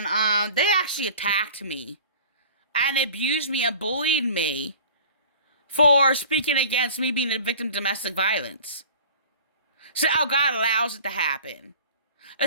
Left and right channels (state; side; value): inverted; both; correlation -0.43